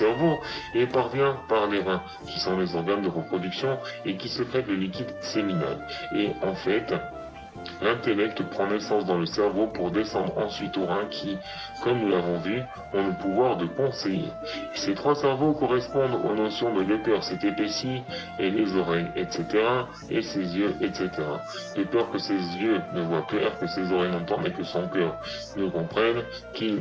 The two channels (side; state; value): both; identical; correlation 1.00